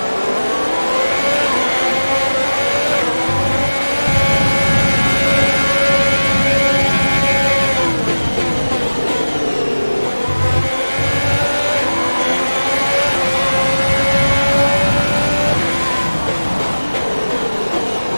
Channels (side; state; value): both; inverted; correlation -1.00